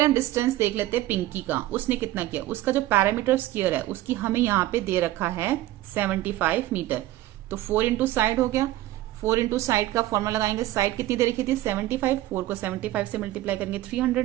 हम डिस्टेंस देख लेते हैं पिंकी का, उसने कितना किया। उसका जो पैरामीटर स्क्वायर है उसकी हमें यहाँ पे दे रखा है 75 मीटर। तो 4 इंटू साइड हो गया। 4 इंटू साइड का फॉर्मूला लगाएंगे, साइड कितनी दे रखी थी 75, 4 को 75 से मल्टीप्लाई करेंगे 300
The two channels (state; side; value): quieter; left; 15.7 dB